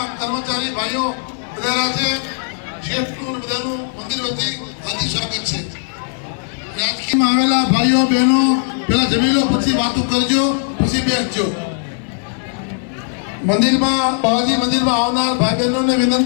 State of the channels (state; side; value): silent; right; 63 dB below the other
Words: કર્મચારી ભાઈઓ બધા છે. શેઠનું બધાનું મંદિર વતી હાર્દિક સ્વાગત છે. રાજકીયમાં આવેલા ભાઈઓ બહેનો પેલા જમી લો, પછી વાતો કરજો, પછી બેસજો. મંદિરમાં બાવાજી મંદિરમાં આવનાર ભાઈ બહેનોને